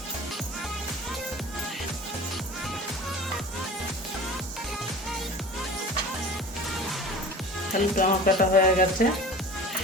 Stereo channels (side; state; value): both; normal; correlation 0.39